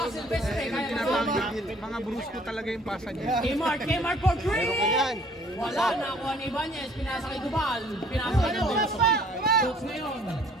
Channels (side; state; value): both; normal; correlation 0.57